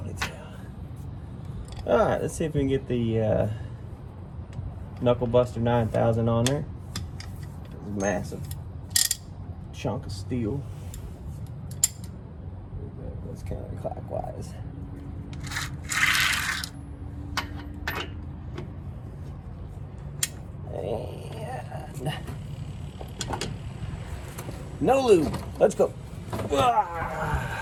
All right, let's see if we can get the Knuckle Buster 9000 on there. Massive chunk of steel. It's counterclockwise. And no lube. Let's go.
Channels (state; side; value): identical; both; correlation 1.00